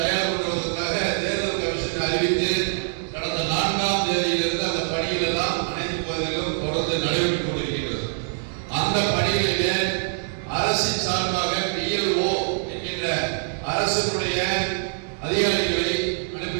பண்ணுவதற்காக தேர்தல் கமிஷன் அறிவித்து கடந்த 4ஆம் தேதியிலிருந்து அந்த பணிகள் எல்லாம் அனைத்து பகுதிகளிலும் தொடர்ந்து நடைபெற்றுக் கொண்டிருக்கின்றது. அந்த பணிகளிலே அரசின் சார்பாக PLO என்கின்ற அரசினுடைய அதிகாரிகளை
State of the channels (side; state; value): left; silent; digital silence